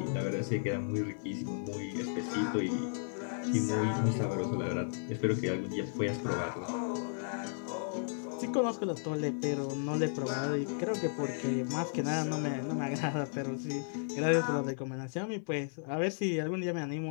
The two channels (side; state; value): right; silent; 55 dB below the other